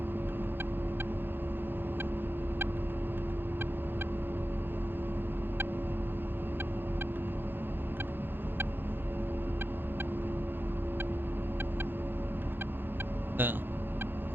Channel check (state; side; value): late; left; 0.099 ms